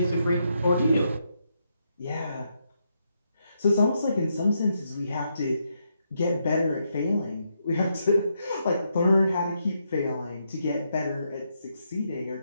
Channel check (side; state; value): both; inverted; correlation -0.80